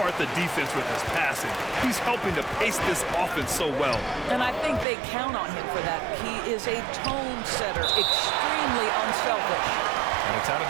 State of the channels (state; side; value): drops out; left; at 4.9 s